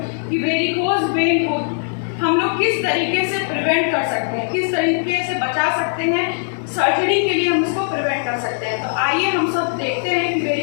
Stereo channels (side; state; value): right; silent; digital silence